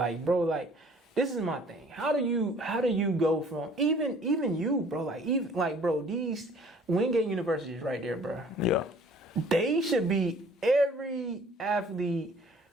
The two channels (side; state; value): both; normal; correlation 0.54